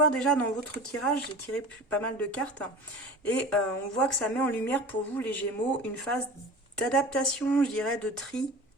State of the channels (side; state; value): both; normal; correlation 0.37